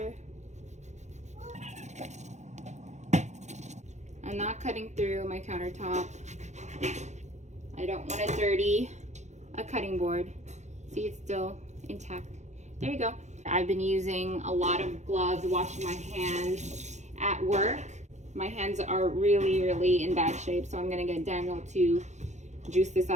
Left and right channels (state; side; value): late; left; 0.34 ms